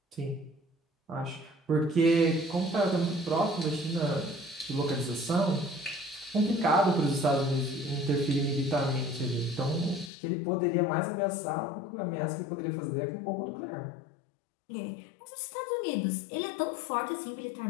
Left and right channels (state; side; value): drops out; right; at 10.1 s